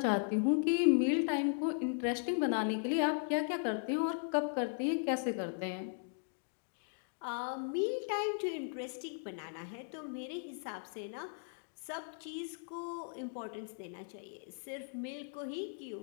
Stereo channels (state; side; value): silent; right; digital silence